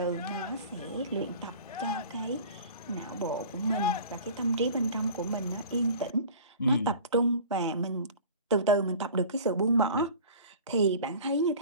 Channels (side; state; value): both; inverted; correlation -0.42